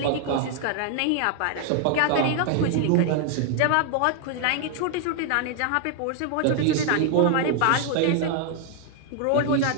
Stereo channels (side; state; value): both; different; correlation 0.00